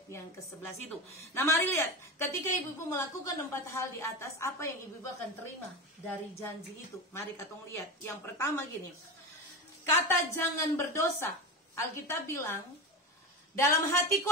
yang ke-11 itu. Nah, mari lihat, ketika ibu-ibu melakukan 4 hal di atas, apa yang ibu-ibu akan terima dari janji itu? Mari katong lihat. Yang pertama gini, kata jangan berdosa. Alkitab bilang, dalam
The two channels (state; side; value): normal; both; correlation 0.23